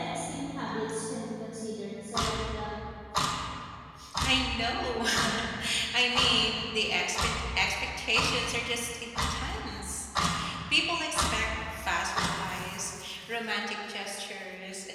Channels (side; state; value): both; identical; correlation 1.00